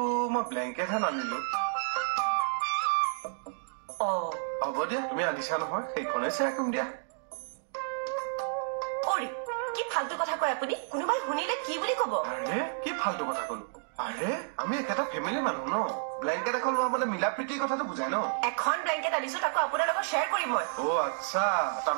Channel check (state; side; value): silent; left; digital silence